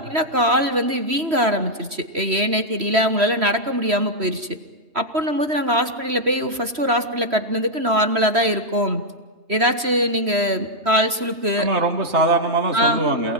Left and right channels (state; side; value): late; left; 3.1 ms